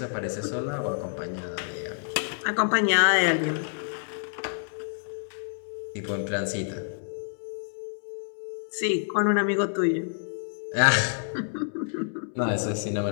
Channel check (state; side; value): silent; right; digital silence